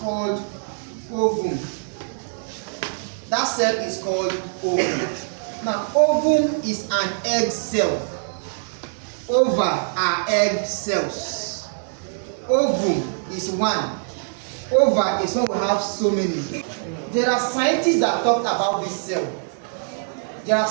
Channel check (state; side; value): silent; left; 56 dB below the other